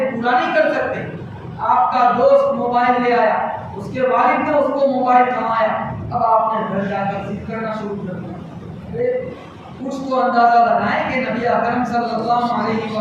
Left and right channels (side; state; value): both; identical; correlation 1.00